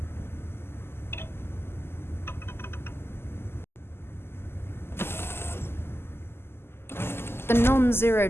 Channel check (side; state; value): right; late; 0.12 ms